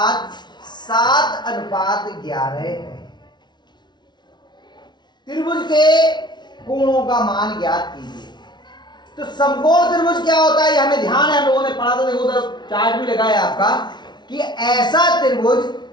7:11 है। त्रिभुज के कोणों का मान ज्ञात कीजिए। तो समकोण त्रिभुज क्या होता है, ये हमें ध्यान है, हम लोगों ने पढ़ा था। देखो उधर चार्ट भी लगा है आपका कि ऐसा त्रिभुज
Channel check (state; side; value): late; right; 0.21 ms